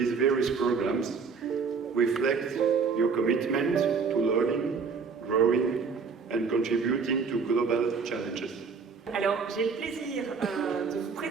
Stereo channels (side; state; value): left; quieter; 5.3 dB